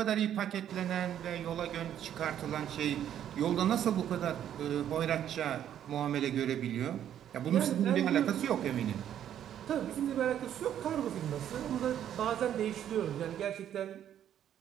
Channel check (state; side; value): quieter; left; 10.3 dB